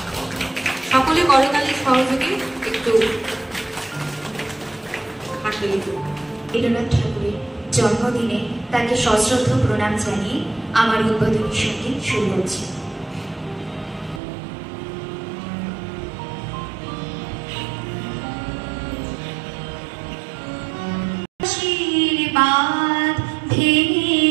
সকলে করতালির সহযোগে একটু হাততালি। রবীন্দ্রনাথ ঠাকুরের জন্মদিনে তাকে সশ্রদ্ধ প্রণাম জানিয়ে আমার উদ্বোধনী সঙ্গীত শুরু হচ্ছে। আশীর্বাদ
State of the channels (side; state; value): left; drops out; at 14.2 s